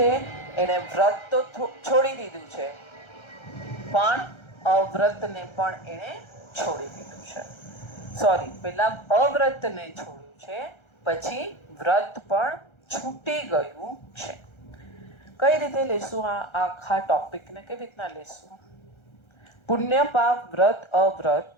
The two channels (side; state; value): right; late; 1.3 ms